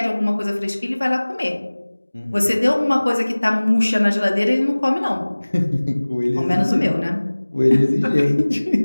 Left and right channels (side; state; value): both; inverted; correlation -1.00